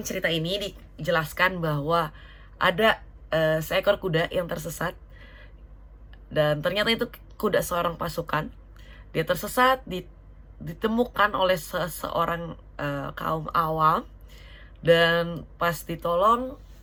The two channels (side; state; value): both; identical; correlation 1.00